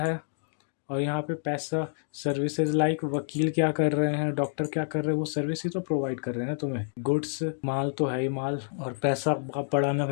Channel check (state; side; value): silent; right; digital silence